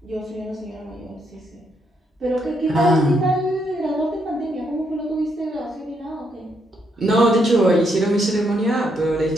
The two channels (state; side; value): normal; both; correlation 0.76